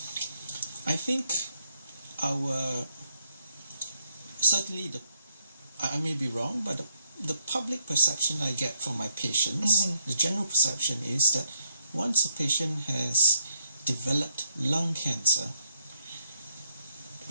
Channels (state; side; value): inverted; both; correlation -0.74